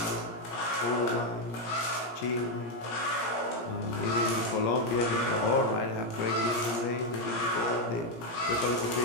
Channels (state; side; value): late; right; 17 ms